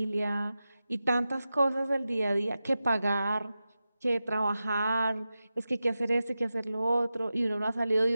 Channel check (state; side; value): inverted; both; correlation -0.93